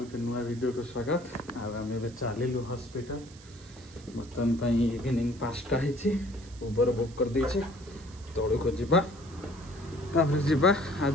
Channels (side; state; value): right; noise; hiss, 22 dB below the sound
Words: गोटे नुआ वीडियो को स्वागत। आम ए चलू हॉस्पिटल बर्तमान इवनिंग 5टा उबर बुक कर देचे तौड़ को जावा